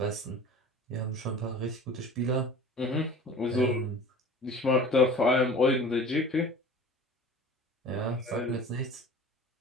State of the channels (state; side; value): normal; both; correlation 0.42